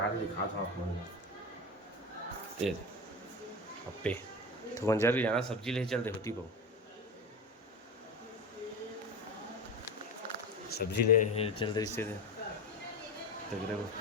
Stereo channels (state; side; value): normal; both; correlation 0.24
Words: के दिखा था आप मन अप्पे तो मंजर भी जाना सब्जी ले चलते होती बहु सब्जी ले चलते इससे तगड़े वो